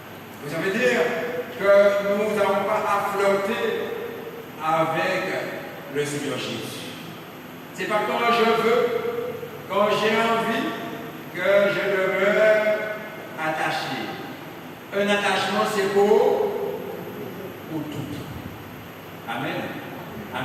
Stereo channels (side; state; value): both; identical; correlation 1.00